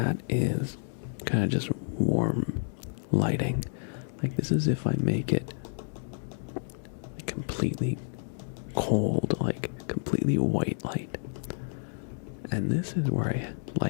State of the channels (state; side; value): silent; right; digital silence